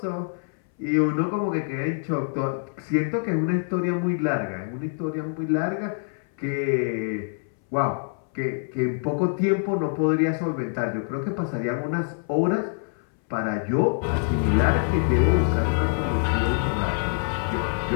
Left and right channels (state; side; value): silent; right; 62 dB below the other